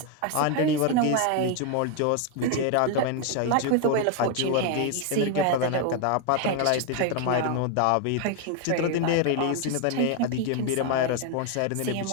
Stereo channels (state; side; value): different; both; correlation 0.01